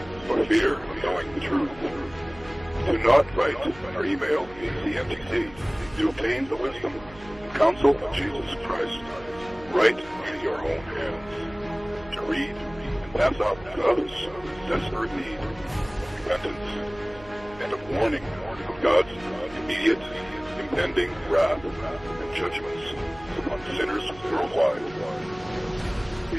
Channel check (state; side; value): noise; right; hum, 20 dB below the sound